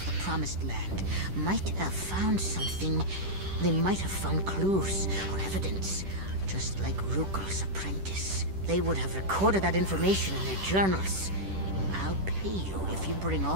the Promised Land might have found something. They might have found clues or evidence, just like Rukel's apprentice. They would have recorded that information in their journals. I'll pay you if you bring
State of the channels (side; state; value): left; late; 10 ms